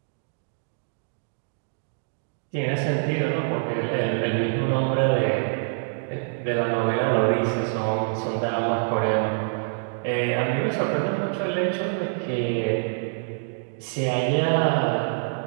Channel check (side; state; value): left; silent; digital silence